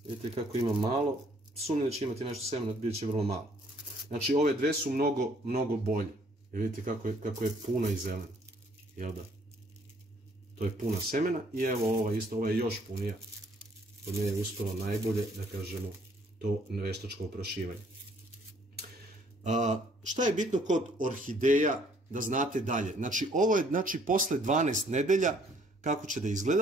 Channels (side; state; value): both; normal; correlation 0.63